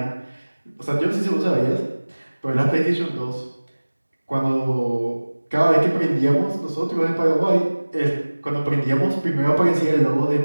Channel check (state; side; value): inverted; both; correlation -1.00